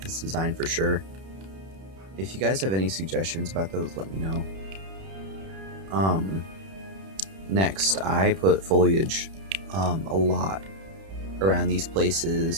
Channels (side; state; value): left; late; 31 ms